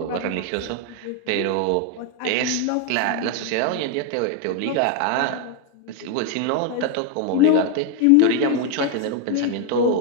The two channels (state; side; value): different; both; correlation 0.01